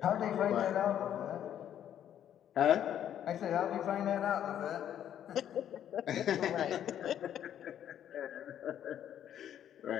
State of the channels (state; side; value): quieter; right; 10.3 dB